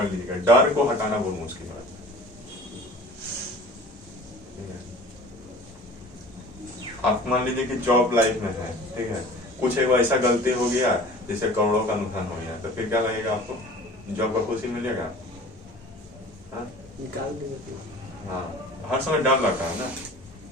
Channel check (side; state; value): both; normal; correlation 0.43